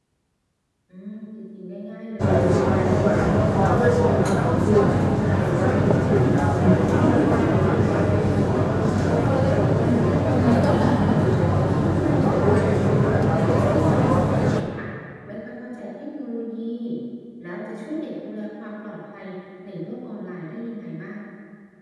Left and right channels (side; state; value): both; identical; correlation 1.00